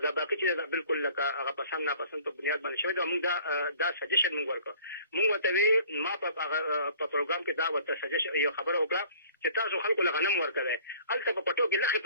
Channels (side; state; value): both; inverted; correlation -0.52